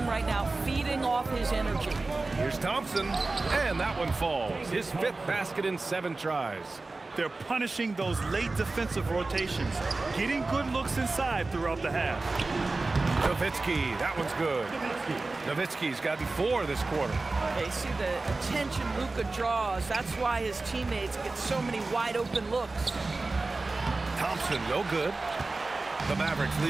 right now feeding off his energy. Here's Thompson, and that one falls. His 5th basket in 7 tries. They're punishing those late defensive rotations, getting good looks inside throughout the half. Nowitzki, that one's good. Nowitzki's gotten 4 this quarter. They see the attention Luka draws. That's why his teammates get so many wide open looks. Thompson, no good. The Mavericks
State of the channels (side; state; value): left; quieter; 3.4 dB